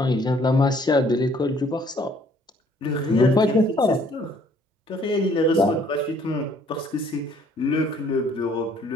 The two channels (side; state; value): both; normal; correlation 0.61